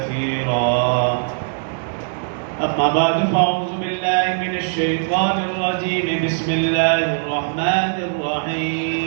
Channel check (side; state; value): left; silent; 60 dB below the other